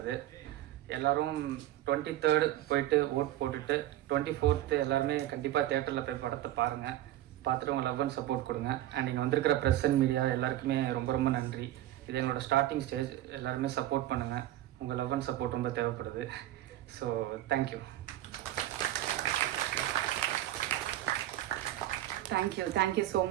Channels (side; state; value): left; quieter; 14.1 dB